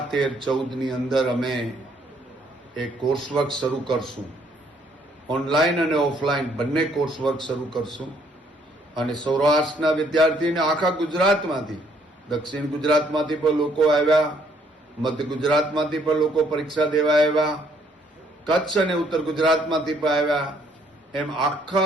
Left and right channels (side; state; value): both; normal; correlation 0.66